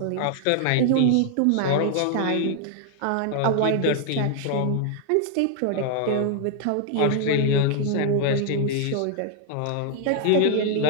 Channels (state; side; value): different; both; correlation 0.00